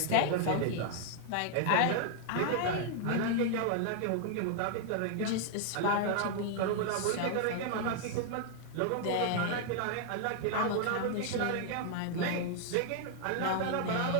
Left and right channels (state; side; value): different; both; correlation 0.00